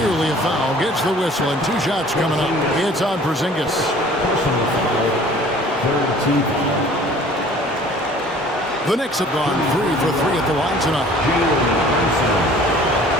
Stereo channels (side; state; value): both; normal; correlation 0.50